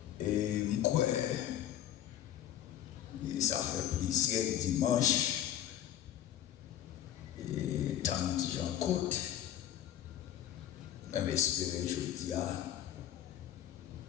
Et moi, ça fait plaisir dimanche. Et tant que j'en côte, même espérer jeudi,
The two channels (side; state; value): right; quieter; 11.5 dB